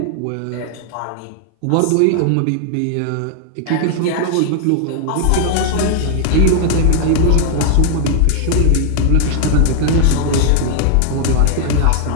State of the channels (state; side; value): different; both; correlation 0.00